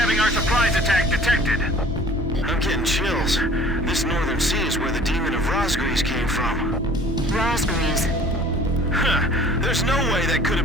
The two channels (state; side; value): normal; both; correlation 0.50